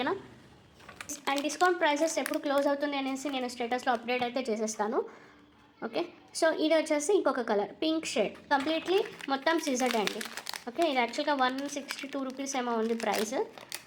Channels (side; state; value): both; identical; correlation 1.00